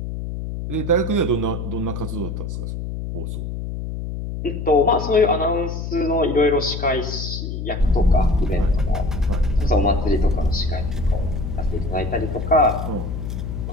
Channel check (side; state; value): left; noise; hum, 5 dB below the sound